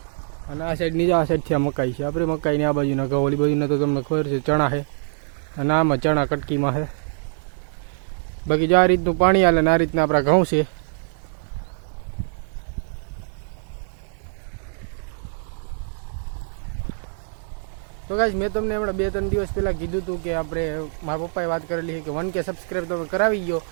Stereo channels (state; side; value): silent; left; digital silence